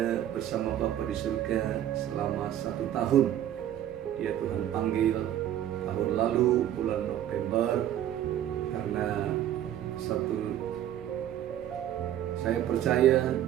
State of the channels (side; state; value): left; quieter; 11.5 dB